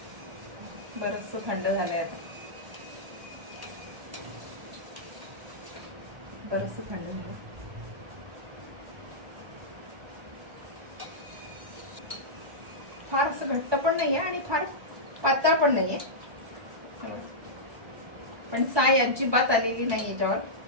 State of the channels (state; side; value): late; left; 1.2 ms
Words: बरंचसं थंड झालंय आता, बरंचसं थंड झालं. फार असं घट्ट पण नाहीये आणि फार पातळ पण नाहीये. पण साय अजिबात आलेली नाही याच्यावर,